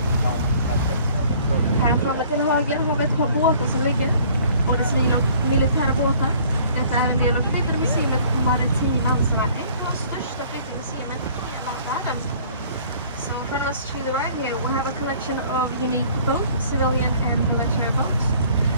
Här framme till höger har vi ett par båtar som ligger, både civila och militära båtar. Detta är en del av flytande museet Maritim Ansvar, ett av de största flytande museerna i hela världen. So from us to the right here we have a collection of unique both civilian and military boats.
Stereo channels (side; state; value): both; inverted; correlation -0.55